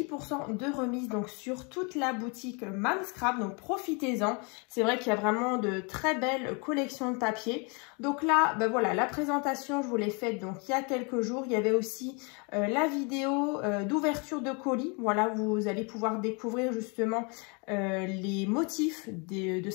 de remise donc sur toute la boutique Mamscrap, donc profitez-en. C'est vrai qu'il y a vraiment de très belles collections de papier. Donc là, ben voilà, la présentation je vous l'ai faite donc il y a quelques jours. Il y avait aussi la vidéo d'ouverture de colis. Voilà, vous allez pouvoir découvrir justement les motifs de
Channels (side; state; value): right; quieter; 33.0 dB